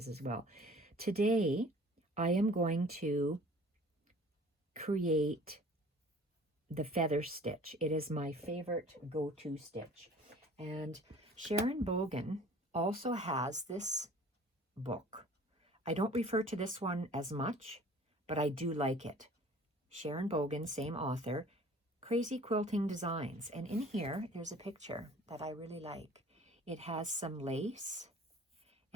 as well. Today, I am going to create the feather stitch. It is my favorite go-to stitch. And Sharon Bogan also has this book. I don't refer to this one as much, but I do like it. Sharon Bogan, same author, Crazy Quilting Designs. And in here, there's a picture that I really like. It has some lace,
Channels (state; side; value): normal; both; correlation 0.48